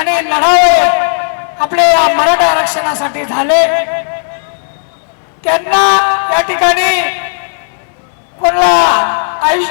लढावे आपले या मराठा आरक्षणासाठी झाले। त्यांना या ठिकाणी कोणाला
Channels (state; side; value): silent; right; digital silence